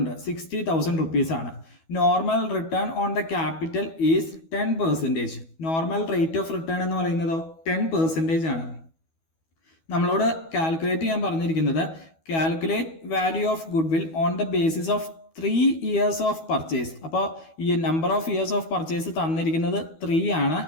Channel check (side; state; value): right; late; 12 ms